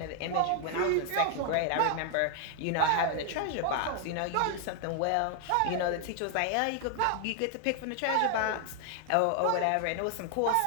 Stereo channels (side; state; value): both; different; correlation 0.00